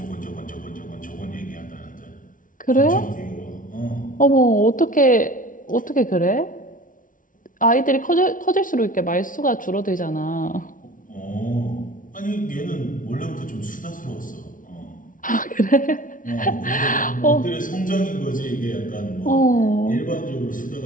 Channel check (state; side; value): late; right; 0.38 ms